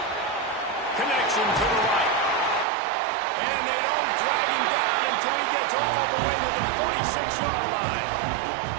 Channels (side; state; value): left; drops out; at 2.7 s